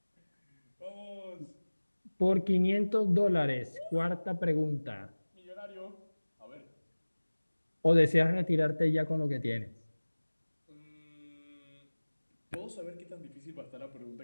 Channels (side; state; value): both; inverted; correlation -1.00